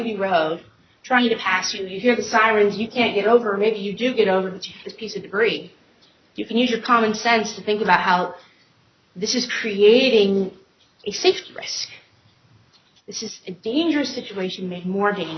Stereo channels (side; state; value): both; identical; correlation 1.00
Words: road trying to pass you. You hear the sirens, you can't get over, or maybe you do get over, but you hit this piece of debris. You can use your common sense to think about how this is creating a safety risk. This is a dangerous situation made more